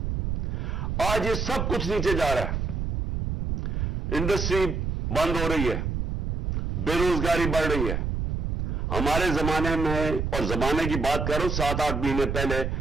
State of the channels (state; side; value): noise; right; rumble, 1 dB below the sound